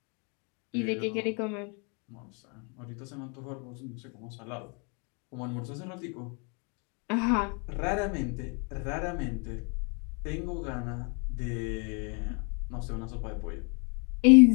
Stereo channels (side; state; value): right; quieter; 35.1 dB